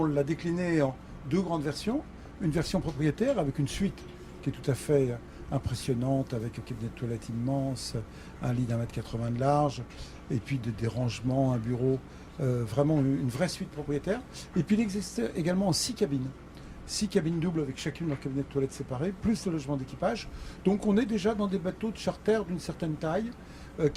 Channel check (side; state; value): both; identical; correlation 1.00